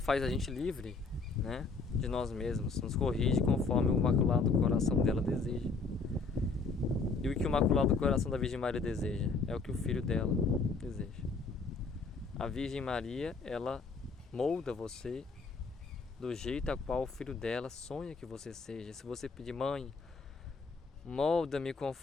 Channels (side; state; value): right; quieter; 4.3 dB